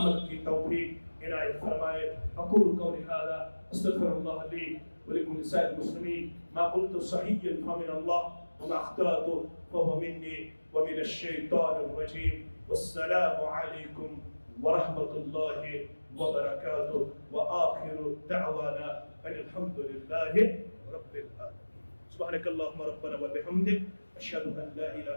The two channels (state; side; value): inverted; both; correlation -1.00